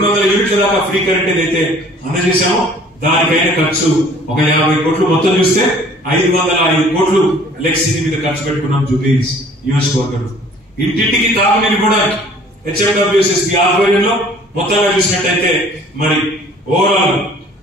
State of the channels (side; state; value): both; normal; correlation 0.53